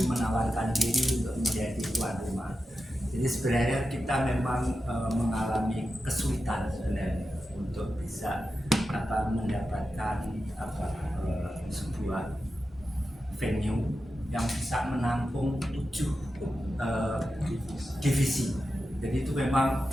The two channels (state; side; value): normal; both; correlation 0.91